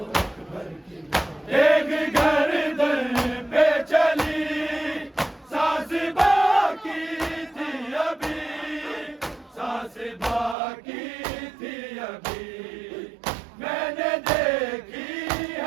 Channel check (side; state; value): left; drops out; at 10.6 s